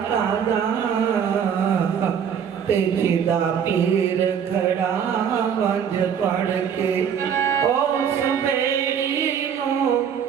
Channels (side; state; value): left; quieter; 7.9 dB